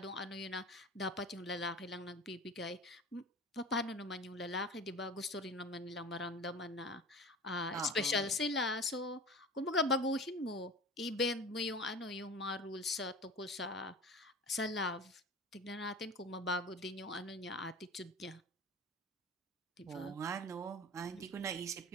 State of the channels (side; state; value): both; normal; correlation 0.36